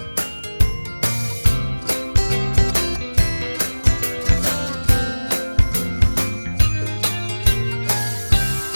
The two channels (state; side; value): inverted; both; correlation -1.00